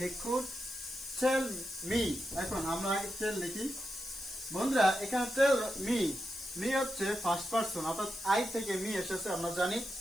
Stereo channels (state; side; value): noise; left; hiss, 13 dB below the sound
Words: could tell me. এখন আমরা আগে টেল লিখি। বন্ধুরা, এখানে টেল মি, মি হচ্ছে ফার্স্ট পারসন, অর্থাৎ আই থেকে মি এসেছে আমরা জানি।